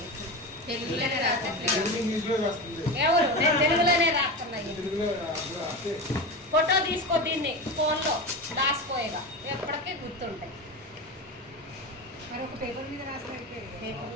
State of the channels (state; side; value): normal; both; correlation 0.23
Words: తెలుగులోనే రాసండి ఇంగ్లీష్లో వస్తుంది ఎవరు నేను తెలుగులోనే రాస్తున్నాయి తెలుగులో రాస్తే ఫోటో తీసుకో దీన్ని ఫోన్లో దాచిపోయేగా ఎప్పటికీ గుర్తుంటాయి మరొక పేపర్ మీద రాస్తే